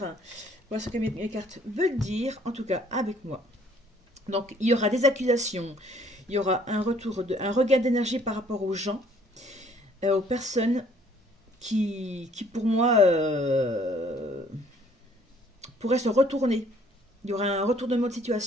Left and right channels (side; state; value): both; normal; correlation 0.60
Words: Voilà ce que mes cartes veulent dire, en tout cas avec moi. Donc il y aura des accusations, il y aura un regain d'énergie par rapport aux gens, aux personnes qui pour moi pourraient se retourner. Il y aura un retournement de